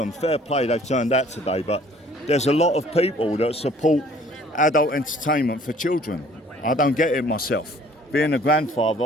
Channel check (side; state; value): both; normal; correlation 0.55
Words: Fair play, they've turned out today. But there's a lot of people that support adult entertainment for children. I don't get it myself. Being a grandfather,